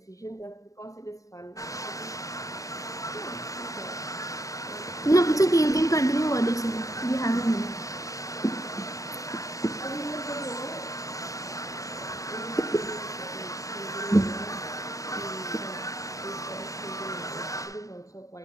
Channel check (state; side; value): late; right; 0.16 ms